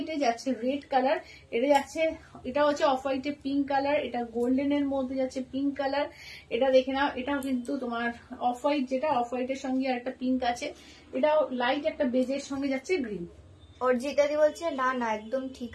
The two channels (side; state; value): both; identical; correlation 1.00